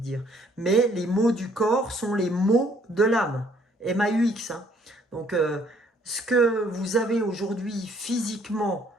Mais les mots du corps sont les mots de l'âme. MAUX. Hein. Donc, ce que vous avez aujourd'hui physiquement,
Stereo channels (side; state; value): both; normal; correlation 0.63